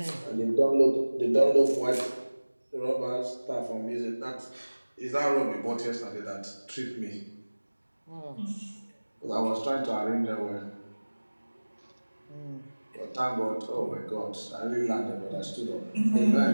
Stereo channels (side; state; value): both; inverted; correlation -1.00